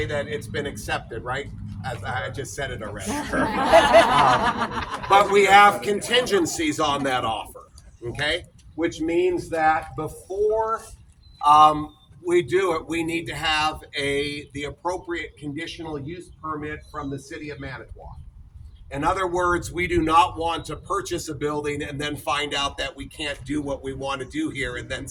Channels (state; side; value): identical; both; correlation 1.00